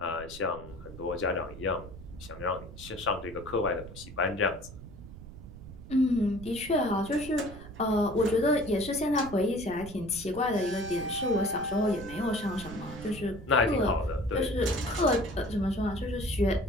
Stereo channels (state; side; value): noise; right; rumble, 14 dB below the sound